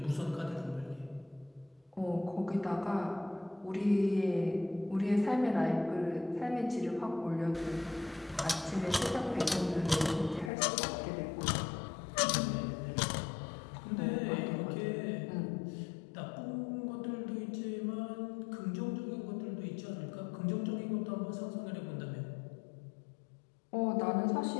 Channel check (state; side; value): drops out; right; at 10.5 s